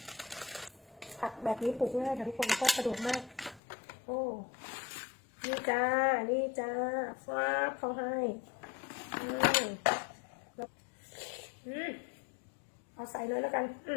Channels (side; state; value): right; drops out; at 3.6 s